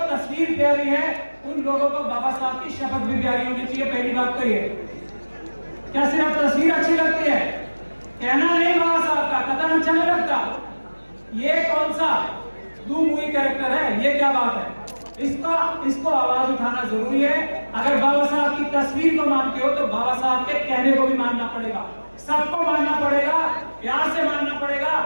तस्वीर प्यारी है उन लोगों को बाबा साहब की शपथ भी प्यारी होनी चाहिए। पहली बात तो ये, क्या सिर्फ तस्वीर अच्छी लगती है, कहना नहीं बाबा साहब का कथन अच्छा नहीं लगता, ये कौन सा दो मूवी कैरेक्टर है, ये क्या बात है? इसको आवाज उठाना जरूरी है। अगर बाबा साहब की तस्वीर को मानते हो तो बाबा साहब के कहने को भी मानना पड़ेगा, सबको मानना पड़ेगा, प्यार से मानना पड़ेगा,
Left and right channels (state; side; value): inverted; both; correlation -1.00